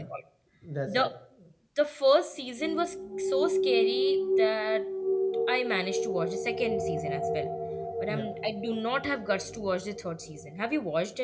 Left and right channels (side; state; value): both; identical; correlation 1.00